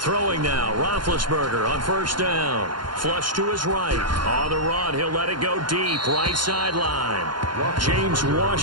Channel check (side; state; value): left; late; 0.71 ms